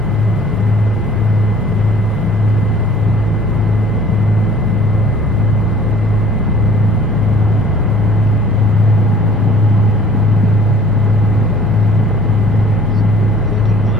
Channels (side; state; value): both; normal; correlation 0.52